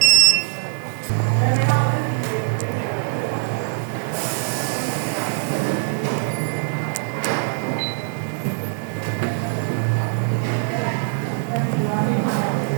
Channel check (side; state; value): left; silent; 62 dB below the other